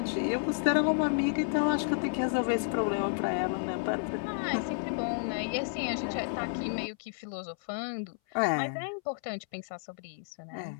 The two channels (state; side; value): silent; right; 57 dB below the other